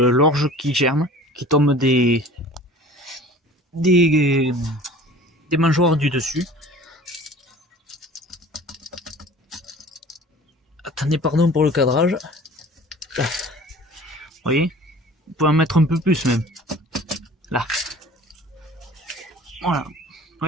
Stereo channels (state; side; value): normal; both; correlation 0.45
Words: qui germe, qui tombe des mangeoires du dessus. Attendez, pardon pour le cadrage. voyez, vous pouvez en mettre un peu plus même. Là. Voilà. Vous